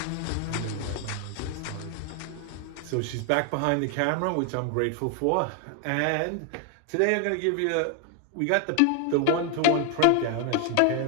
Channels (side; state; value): both; different; correlation 0.00